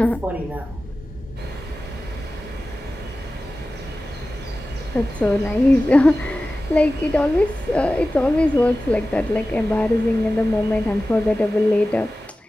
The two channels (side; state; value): both; normal; correlation 0.95